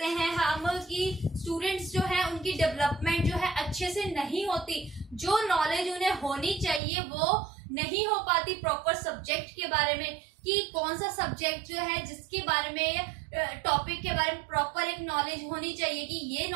हैं हम कि स्टूडेंट्स जो है उनकी डेवलपमेंट जो है अच्छे से नहीं होती, जो नॉलेज उन्हें होनी चाहिए वो नहीं हो पाती प्रॉपर सब्जेक्ट के बारे में, कि कौन सा सब्जेक्ट जो है जिसके बारे में टॉपिक के बारे में प्रॉपर एक नॉलेज होनी चाहिए, कि ये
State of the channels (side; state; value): left; drops out; at 6.8 s